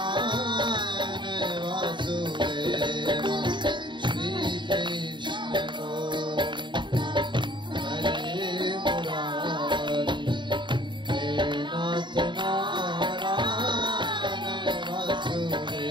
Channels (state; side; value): late; left; 0.23 ms